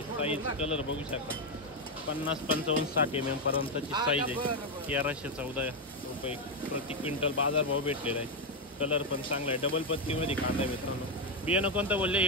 साईज कलर बघू शकता. 50-55-60 mm पर्यंतची साईज आहे. 1314 रुपये प्रति क्विंटल बाजारभाव भेटलेला आहे. कलर पण चांगला आहे. डबल पत्तीमध्ये कांदा आहे मित्रांनो. बियाणं कोणतं बोलले?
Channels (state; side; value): normal; both; correlation 0.05